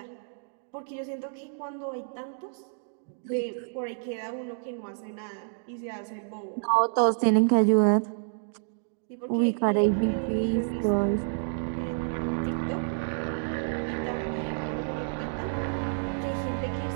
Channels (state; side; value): silent; left; digital silence